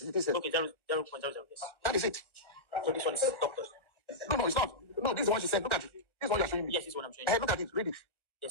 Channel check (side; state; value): right; late; 1.3 ms